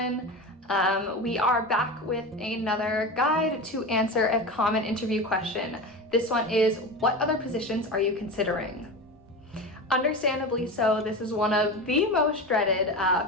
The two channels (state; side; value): normal; both; correlation 0.26